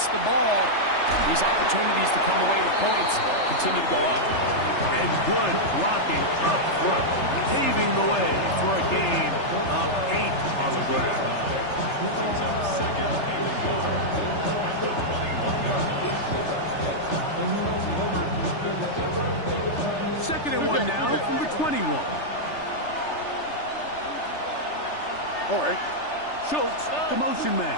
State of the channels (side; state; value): right; late; 3.3 ms